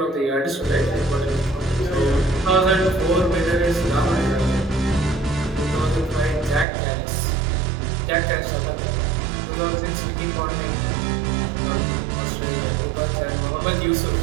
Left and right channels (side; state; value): left; drops out; at 6.7 s